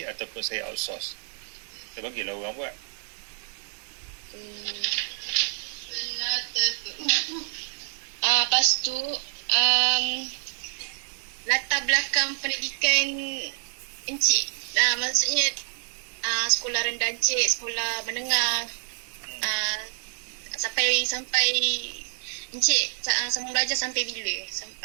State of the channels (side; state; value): left; silent; 58 dB below the other